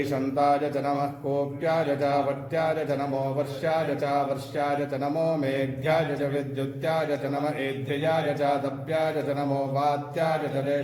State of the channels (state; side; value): identical; both; correlation 1.00